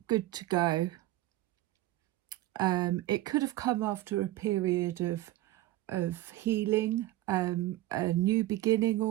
good to go. It could have come after a period of healing, a new beginning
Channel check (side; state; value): left; quieter; 16.1 dB